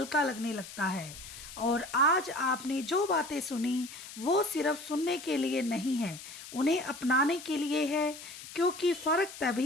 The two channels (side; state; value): left; noise; hiss, 14 dB below the sound